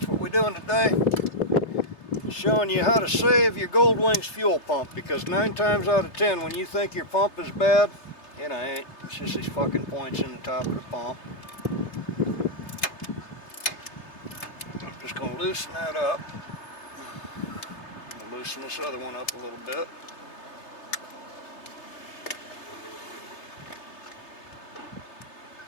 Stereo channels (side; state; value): right; late; 3.3 ms